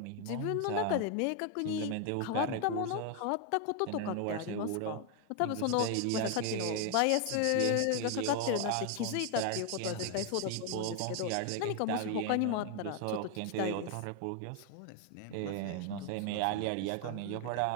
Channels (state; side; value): different; both; correlation 0.00